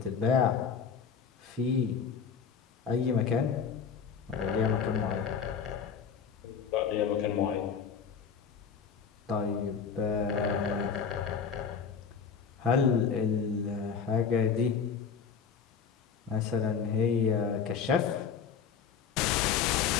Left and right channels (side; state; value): right; quieter; 6.6 dB